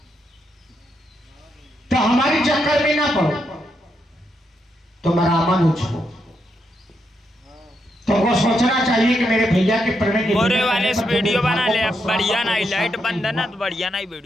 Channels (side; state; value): both; normal; correlation 0.81